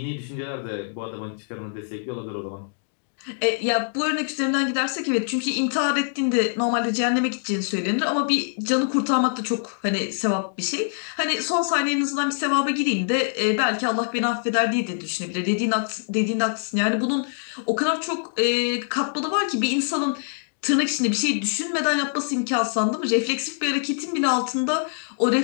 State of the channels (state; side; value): silent; right; digital silence